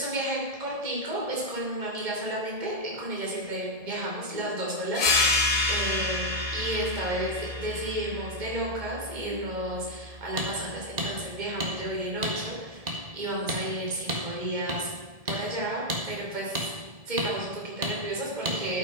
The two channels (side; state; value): left; late; 1.7 ms